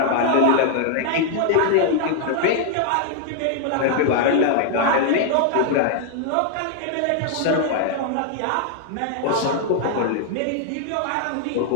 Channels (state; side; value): different; both; correlation 0.00